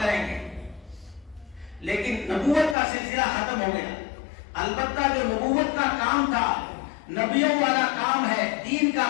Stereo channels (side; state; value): right; drops out; at 2.8 s